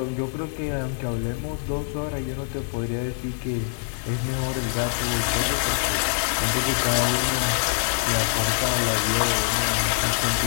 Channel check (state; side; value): silent; right; digital silence